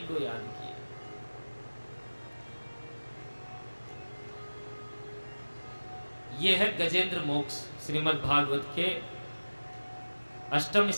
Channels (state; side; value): inverted; both; correlation -1.00